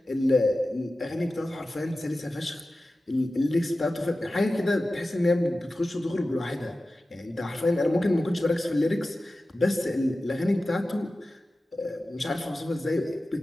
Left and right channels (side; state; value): both; normal; correlation 0.95